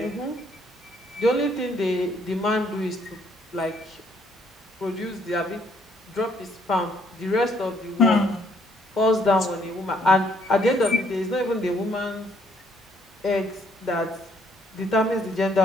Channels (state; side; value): normal; both; correlation 0.67